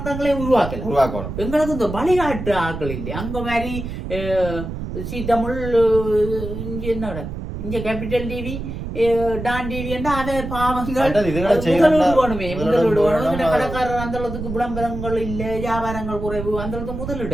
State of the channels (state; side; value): noise; right; rumble, 7 dB below the sound